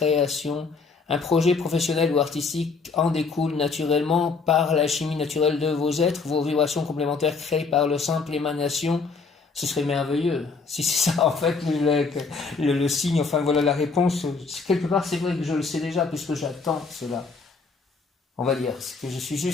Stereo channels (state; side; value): quieter; right; 4.6 dB